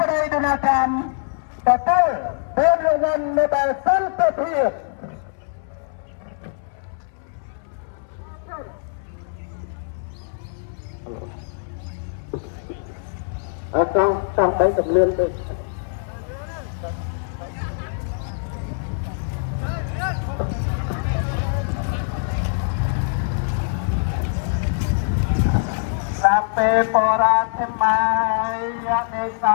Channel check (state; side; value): silent; right; 63 dB below the other